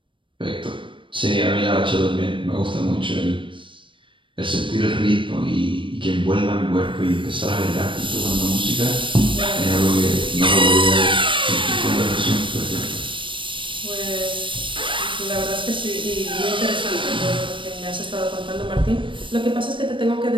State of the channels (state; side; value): late; left; 0.25 ms